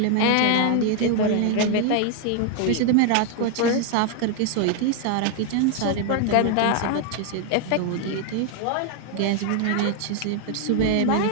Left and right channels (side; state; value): both; different; correlation 0.00